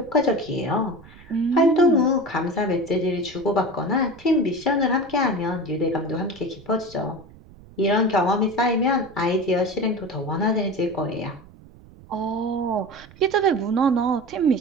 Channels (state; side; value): noise; right; rumble, 22 dB below the sound